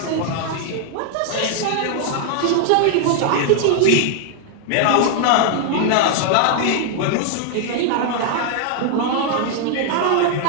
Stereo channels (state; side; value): different; both; correlation 0.00